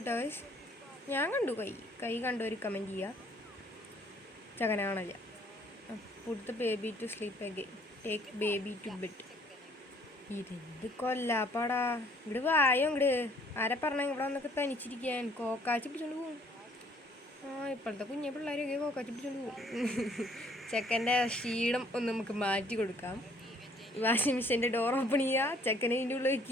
ഗൈസ്. ഞാൻ കണ്ടു കൈ കണ്ടു. ഒരു കമൻറ്റ് ചെയ്യുക. ചെക്കനെ കാണില്ല. Put the baby to sleep again. Take baby to bed. ഇതെന്ത് കൊല്ലാപ്പാടാ. ഇവിടെ വായോ ഇങ്ങട്. ആരെ പറഞ്ഞ ഇവിടെ വന്നൊക്കെ തനിച്ചിരിക്കാൻ കോക്കാച്ചി പിടിച്ചോണ്ട് പോകും. ഇപ്പോഴത്തെ കുഞ്ഞെ പിള്ളേരൊക്കെ കോക്കാച്ചി പിടിച്ചോണ്ട് പോകും. ചെക്കൻ്റെ ക്ഷീണം ഒന്ന് നമുക്ക് മാറ്റി കൊടുക്കാം. വാഷിംഗ് മെഷീൻ്റെ ഡോർ ഓപ്പൺ ചെയ്യുക, ചെക്കനെ ഇതിൻ്റെ ഉള്ളിൽ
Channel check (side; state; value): both; normal; correlation 0.60